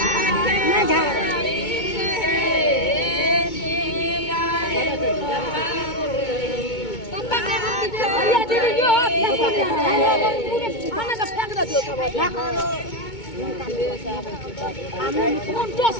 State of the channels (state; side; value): late; right; 2.2 ms